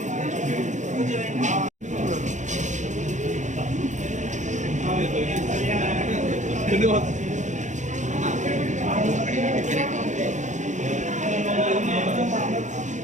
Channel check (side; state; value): left; late; 0.35 ms